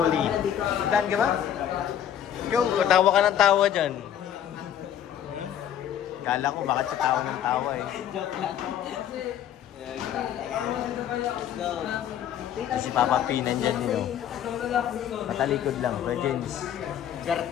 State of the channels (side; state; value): right; quieter; 10.1 dB